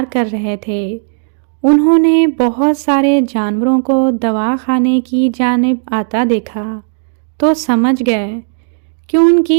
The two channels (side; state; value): left; silent; 71 dB below the other